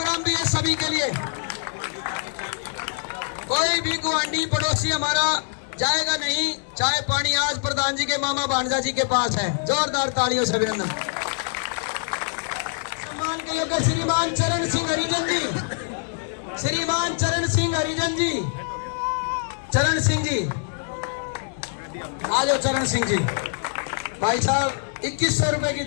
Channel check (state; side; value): silent; right; digital silence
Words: भी है सभी के लिए। कोई भी गुआंढी पड़ोसी हमारा जाएगा नहीं, चाय पानी आज प्रधान जी के मामा भांजा जी के पास है। जोरदार तालियों से अभिनंदन। सम्मान के लिए श्रीमान चरण सिंह हरिजन जी, श्रीमान चरण सिंह हरिजन जी, चरण सिंह जी आ जाओ। चरण सिंह जी भाई साहब 2100 रुपए की